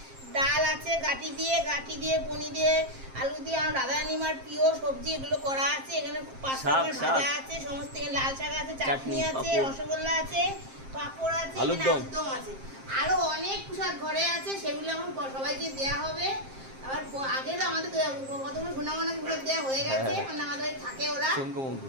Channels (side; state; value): left; late; 7.5 ms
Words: ডাল আছে, গাটি দিয়ে পনির দিয়ে, আলু দিয়ে, আমার রাধারানী মার প্রিয় সবজি এগুলো করা আছে। এখানে পাঁচ রকমের ভাজা আছে, সমস্ত এখানে লাল শাক আছে, চাটনি আছে, রসগোল্লা আছে, পাঁপড় আছে, আলুরদম আছে, আরো অনেক প্রসাদ ঘরে আছে। সেগুলো এখন সবাইকে দেওয়া হবে। আবার আগে তো আমাদের কতগুলো সোনামানাকে প্রসাদ দেওয়া হয়ে গেছে, মানে আমাদের থাকে ওরা